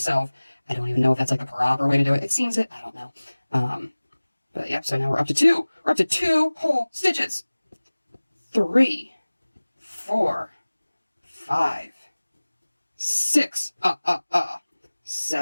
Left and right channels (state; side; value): inverted; both; correlation -1.00